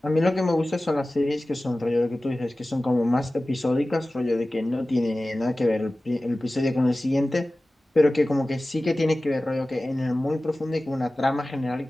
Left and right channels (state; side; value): normal; both; correlation 0.96